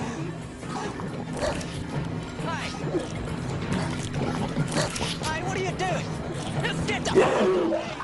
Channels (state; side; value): identical; both; correlation 1.00